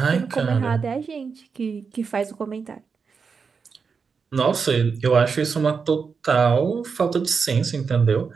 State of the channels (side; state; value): left; quieter; 5.5 dB